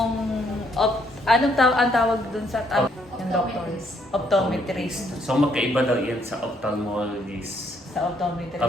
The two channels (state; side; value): normal; both; correlation 0.70